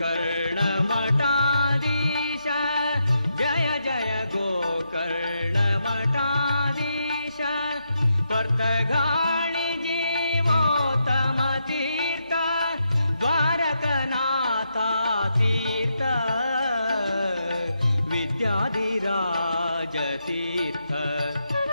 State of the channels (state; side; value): inverted; both; correlation -0.82